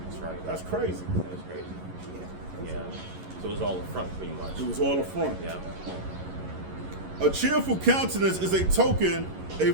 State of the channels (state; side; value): late; left; 11 ms